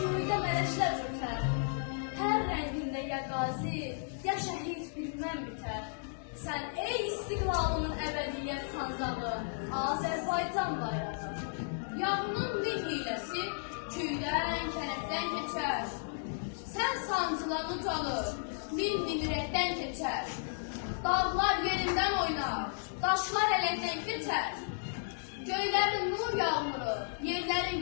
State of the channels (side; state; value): right; silent; digital silence